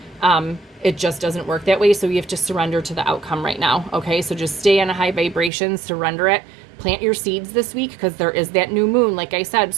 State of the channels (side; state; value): left; drops out; at 5.5 s